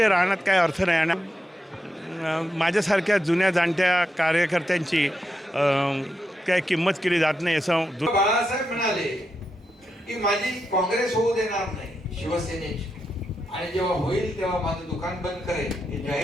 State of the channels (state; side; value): normal; both; correlation 0.85